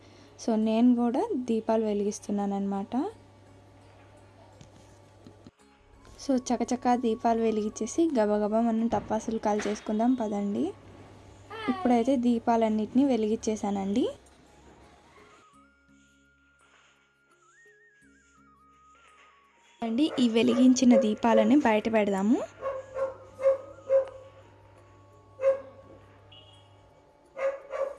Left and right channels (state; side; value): identical; both; correlation 1.00